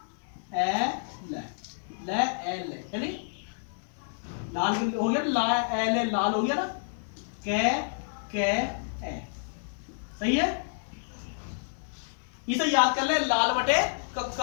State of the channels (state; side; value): silent; right; digital silence